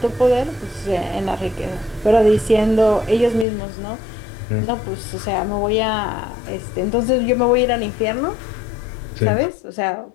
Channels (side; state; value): right; drops out; at 3.5 s